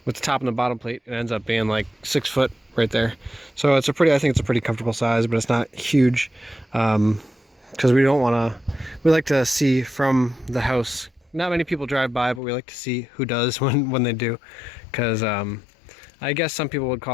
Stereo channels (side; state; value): right; drops out; at 12.4 s